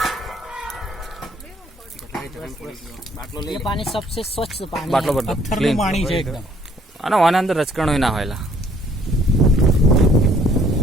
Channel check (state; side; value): normal; both; correlation 0.62